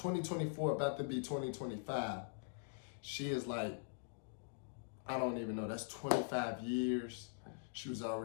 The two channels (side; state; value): right; silent; digital silence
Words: about to be 2025, she is like, I don't even know, that's 25 years. She was